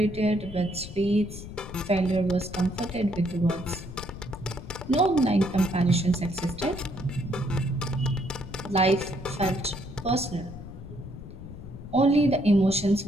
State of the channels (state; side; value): noise; left; rumble, 12 dB below the sound